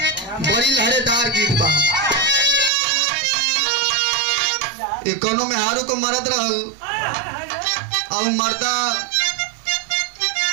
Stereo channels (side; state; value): left; drops out; at 2.7 s